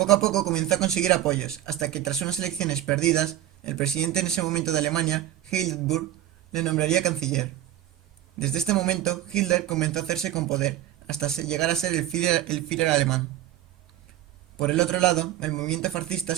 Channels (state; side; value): quieter; left; 13.0 dB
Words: a poco comenzó a conseguir apoyos, hasta que tras unas elecciones perdidas, el presidente en ese momento de Alemania, Hindenburg, le nombraría canciller. Desde este momento, Hitler comenzó a hacerse con poder, hasta llegar a ser el Führer alemán. Por el otro lado, el movimiento fascista